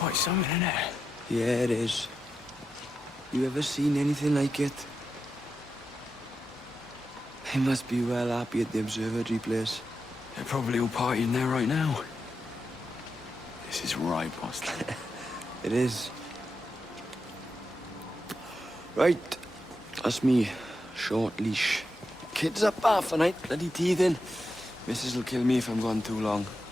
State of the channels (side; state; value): both; normal; correlation 0.87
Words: something, isn't it? Yeah, it is. You ever seen anything like it? They must be well happy at the observatory place. They're probably all partying there right now. This is right, boss. It is. Right. That's me. Short leash. Kids up half a night, bloody teething. Missus will kill me if I'm gone too long.